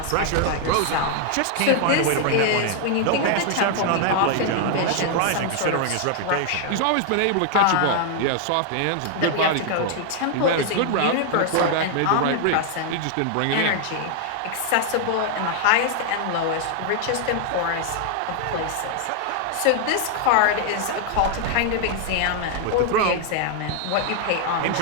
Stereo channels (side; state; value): both; different; correlation 0.00